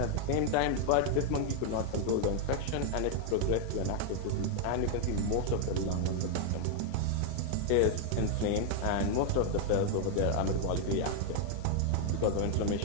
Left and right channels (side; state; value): both; different; correlation 0.00